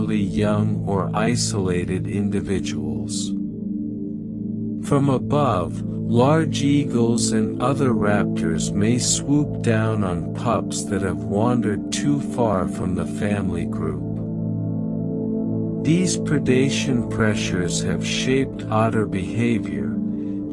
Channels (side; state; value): both; identical; correlation 1.00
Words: young or isolated individuals. From above, large eagles and other raptors may swoop down on pups that have wandered too far from the family group. These predation pressures have shaped otter behavior.